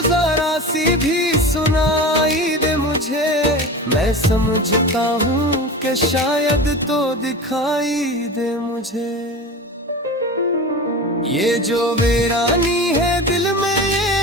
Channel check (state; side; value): normal; both; correlation 0.31